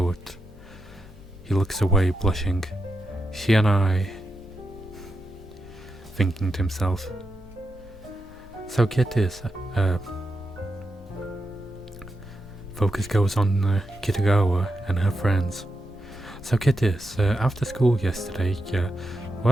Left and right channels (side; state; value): both; normal; correlation 0.87